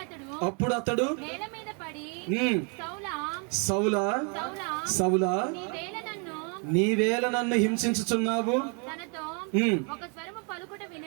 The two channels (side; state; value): left; quieter; 36.5 dB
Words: అప్పుడు అతడు నేల మీద పడి సౌలా సౌలా నీవేళ నన్ను హింసించుచున్నావు,